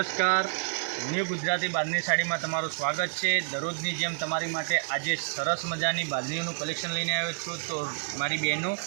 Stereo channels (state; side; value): silent; left; 59 dB below the other